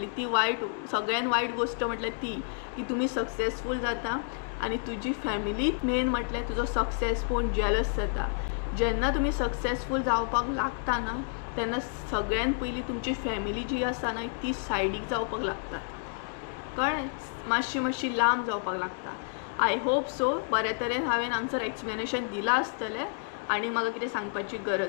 ती वायट, सगळ्यान वायट गोश्ट म्हटल्यार ती की तुमी सक्सेसफूल जाता आनी तुजी फॅमिली मेन म्हटल्यार तुजो सक्सेस पळोवन जेलस जाता. जेन्ना तुमी सक्सेसफूल जावपाक लागता ना तेन्ना सगळ्यान पयलीं तुमची फॅमिली जी आसा ना ती सायडीक जावपाक लागता. कळ्ळें. मातशी लांब जावपाक लागता. आय होप सो बऱ्या तरेन हांवें हांगसर एक्सप्लेनेशन दिलां आसतलें आनी म्हाका कितें सांगपाची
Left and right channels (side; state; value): right; silent; digital silence